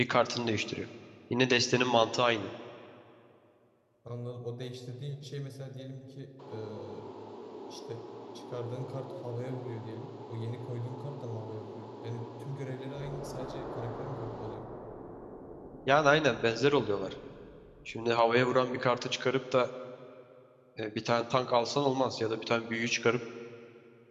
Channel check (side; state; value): both; identical; correlation 1.00